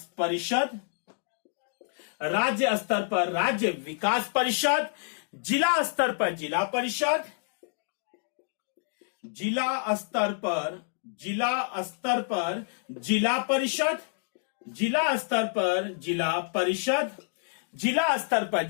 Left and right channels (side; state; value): right; silent; digital silence